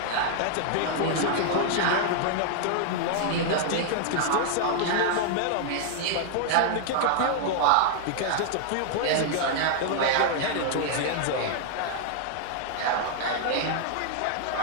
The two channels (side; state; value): both; different; correlation -0.01